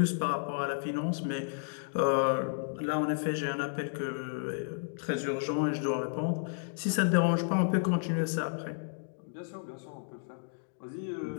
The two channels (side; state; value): right; silent; digital silence